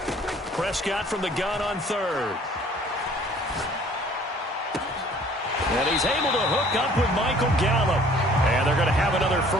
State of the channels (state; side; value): normal; both; correlation 0.54